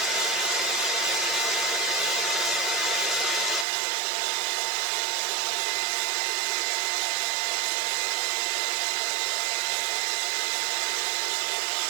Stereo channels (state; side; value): drops out; left; at 3.7 s